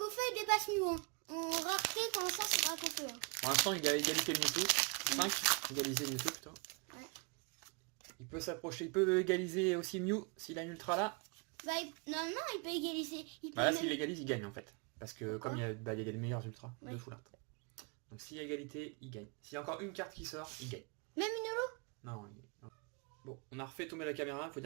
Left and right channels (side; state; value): left; quieter; 33.9 dB